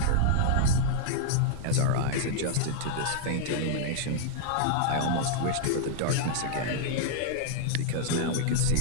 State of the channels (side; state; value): both; different; correlation -0.01